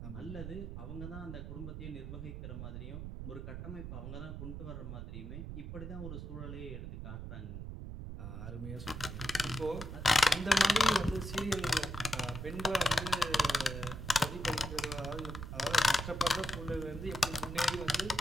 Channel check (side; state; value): right; noise; rumble, 7 dB below the sound